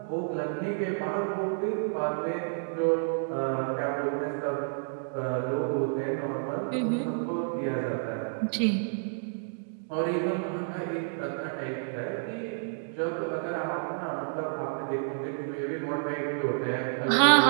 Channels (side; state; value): left; silent; digital silence